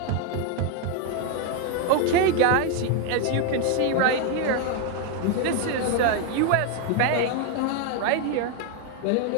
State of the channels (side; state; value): both; different; correlation 0.01